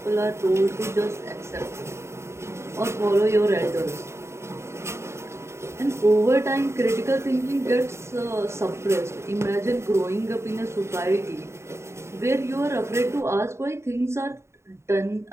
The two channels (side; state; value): left; late; 0.13 ms